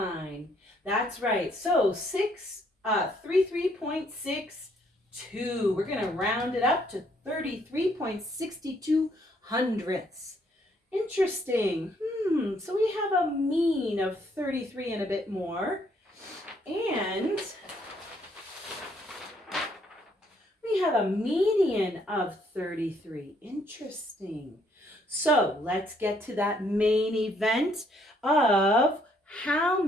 That's right. So 33.62. We're going to round it up to 33.62 hundredths. Interesting. So we have a mean of 33 and a bit more. And we have a median of 33. Interesting. So let's get to that main event of how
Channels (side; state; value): both; normal; correlation 0.68